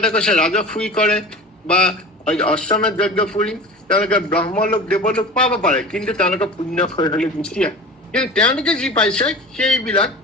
কৈছে ৰাজসুই কৰে বা অশ্বমেধ যজ্ঞ ফুৰি তেওঁলোকে ব্ৰহ্মলোক দেৱলোক পাব পাৰে, কিন্তু তেওঁলোকে পুণ্য ক্ষয় হলে গুচি আহে। কিন্তু তেওঁলোকে যি পাইছে সেইবিলাক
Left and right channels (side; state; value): both; normal; correlation 0.35